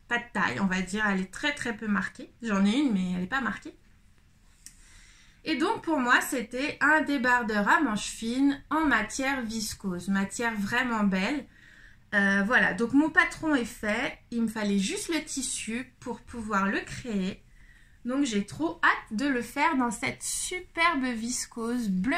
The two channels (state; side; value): identical; both; correlation 1.00